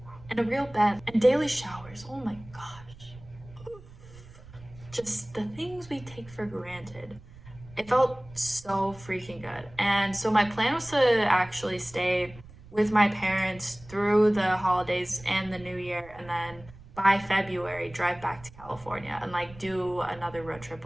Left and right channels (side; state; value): right; noise; rumble, 20 dB below the sound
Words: and a real bed and daily showers. Oh my gosh, just the things we take for granted. It felt so freaking good. And so my plan was to actually stay with my parents through the holidays and the new year, and then by February drive back to California and do another road trip